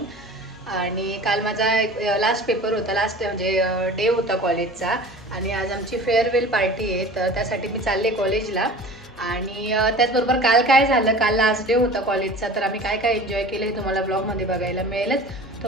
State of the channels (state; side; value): normal; both; correlation 0.40